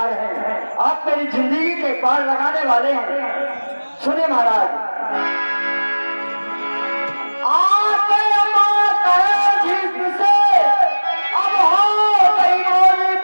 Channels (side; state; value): both; inverted; correlation -1.00